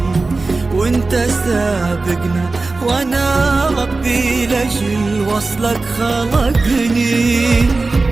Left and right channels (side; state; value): left; quieter; 3.6 dB